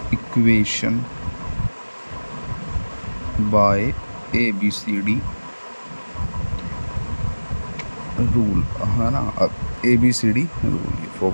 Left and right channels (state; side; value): inverted; both; correlation -1.00